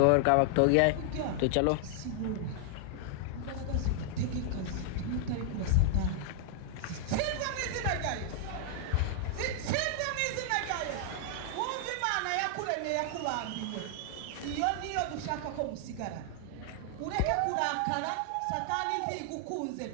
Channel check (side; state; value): both; different; correlation 0.00